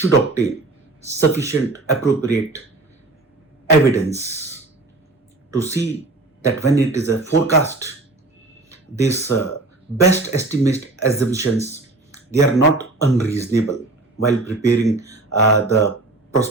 obtain sufficient appropriate evidence to see that when it is a forecast, these best estimate assumptions, they are not unreasonable while preparing the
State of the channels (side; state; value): left; quieter; 3.1 dB